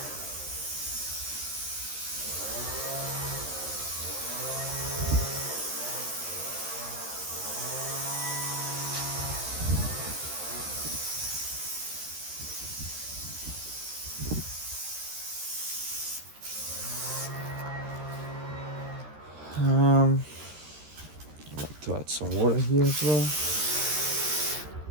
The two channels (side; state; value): left; late; 13 ms